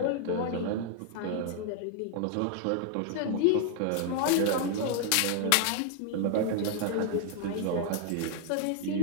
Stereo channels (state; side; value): different; both; correlation 0.00